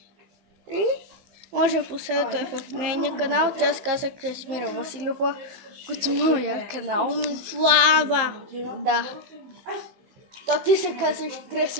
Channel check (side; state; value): left; late; 15 ms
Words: И може да последвате в нейния канал. Тя се казва Красимира Василова, като моя канал. Слава! Да. То ти се казваш